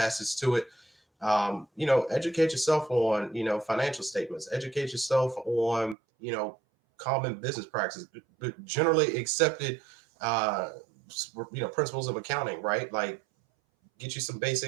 to it. Educate yourself on, financial statements, educate yourself on, common business practices, generally accepted, principles of accounting, right? Like get you some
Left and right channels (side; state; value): left; drops out; at 6.0 s